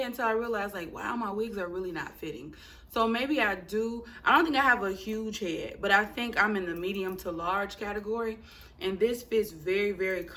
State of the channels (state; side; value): identical; both; correlation 1.00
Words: until I realized, like, wow, my wigs are really not fitting. So maybe I do. I don't think I have a huge head, but I think I'm in the medium to large category. And this fits very, very